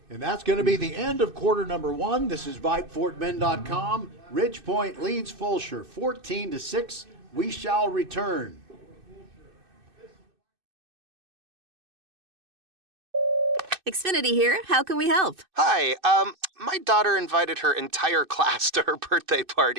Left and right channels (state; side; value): late; left; 2.6 ms